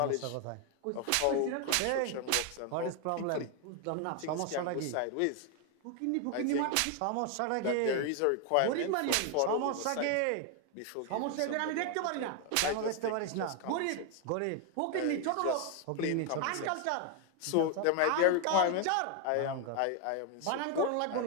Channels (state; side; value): different; both; correlation 0.01